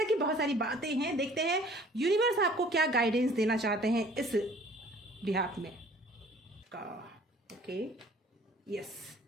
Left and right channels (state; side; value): normal; both; correlation 0.53